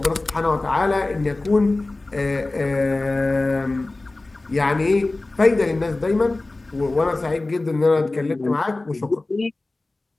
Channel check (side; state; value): right; quieter; 3.0 dB